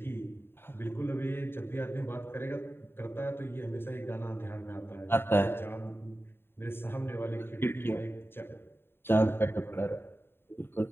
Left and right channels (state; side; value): late; right; 0.11 ms